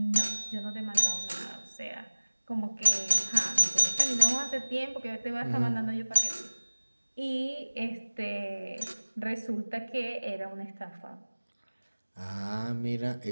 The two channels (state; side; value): inverted; both; correlation -1.00